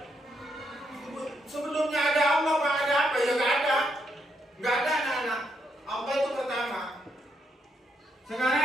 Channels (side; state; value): both; normal; correlation 0.77